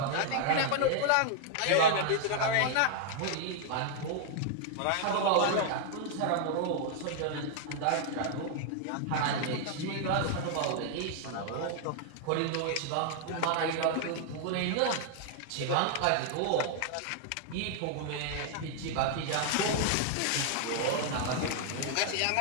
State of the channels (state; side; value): different; both; correlation 0.00